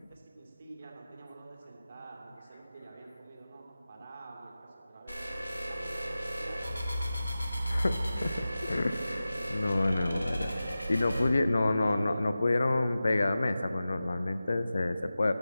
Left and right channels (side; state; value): both; inverted; correlation -0.95